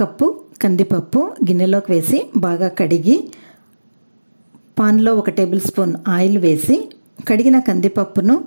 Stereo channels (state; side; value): inverted; both; correlation -1.00